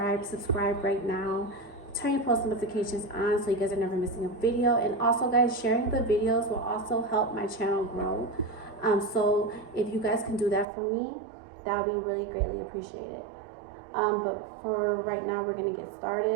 right now. Turn your post notifications on so you guys are never missing a video. And also, guys, sharing the videos will also help my channel grow. So if you guys can do that for me, that would be really greatly appreciated. But for right now, we're gonna get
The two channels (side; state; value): left; drops out; at 10.7 s